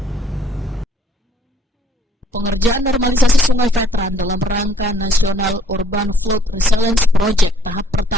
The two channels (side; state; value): both; normal; correlation 0.63